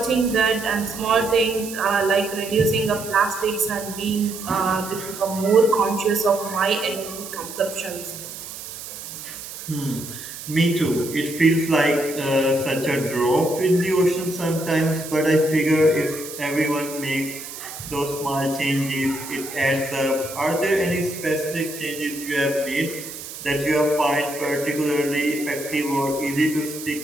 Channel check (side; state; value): right; noise; hiss, 11 dB below the sound